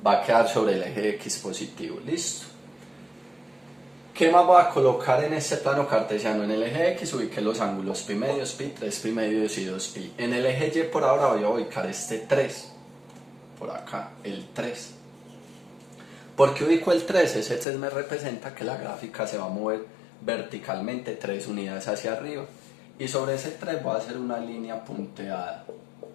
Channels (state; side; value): drops out; right; at 17.7 s